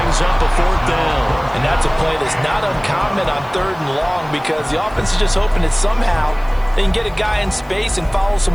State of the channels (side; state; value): left; noise; hiss, 28 dB below the sound